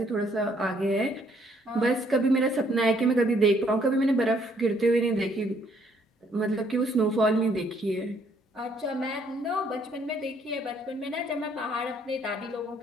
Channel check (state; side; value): normal; both; correlation 0.67